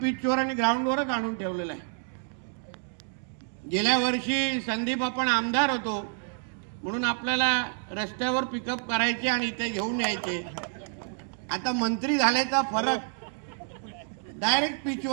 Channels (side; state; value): left; silent; 59 dB below the other